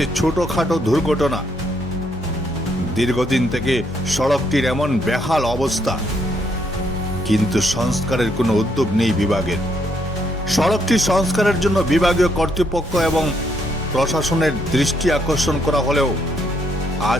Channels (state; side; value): normal; both; correlation 0.73